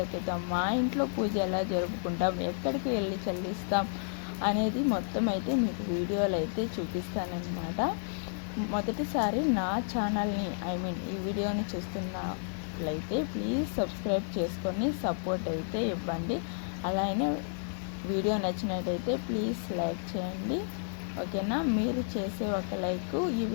ఎత్తుతాం, మా ఇంట్లో పూజ ఎలా జరుపుకుంటాం, ఎక్కడికి వెళ్ళి చెల్లిస్తాం అనేది మొత్తం అయితే మీకు వీడియోలు అయితే చూపిస్తానన్నమాట. మొదటిసారి నా ఛానల్ని ఈ వీడియోని చూస్తున్నట్లయితే ప్లీజ్ సబ్స్క్రైబ్ చేసుకొని సపోర్ట్ అయితే ఇవ్వండి. అలానే వీడియో నచ్చినట్టయితే ప్లీజ్ లైక్ చేయండి, ఓకేనా? మీరు చేసే ఒక లైక్ ఈ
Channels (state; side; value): silent; right; 57 dB below the other